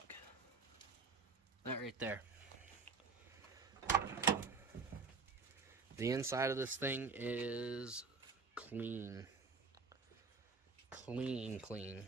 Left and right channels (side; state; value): left; quieter; 4.7 dB